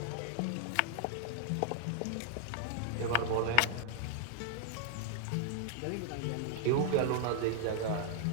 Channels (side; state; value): both; different; correlation 0.00